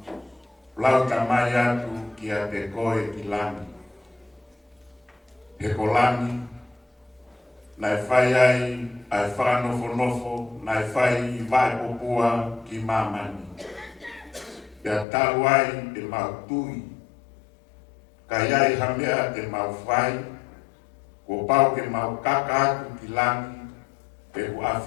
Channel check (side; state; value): right; drops out; at 15.1 s